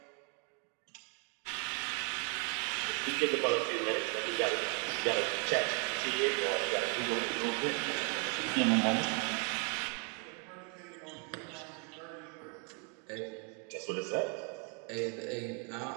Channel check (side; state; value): left; quieter; 37.6 dB